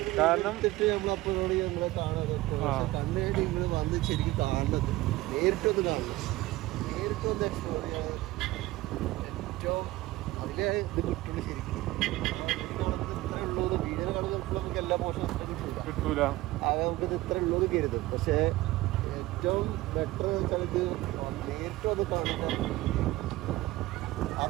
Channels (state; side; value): quieter; left; 18.2 dB